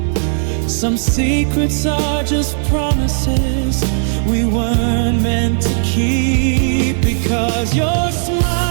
Some secrets are just promises we weren't meant to keep. Because your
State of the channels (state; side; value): silent; left; 66 dB below the other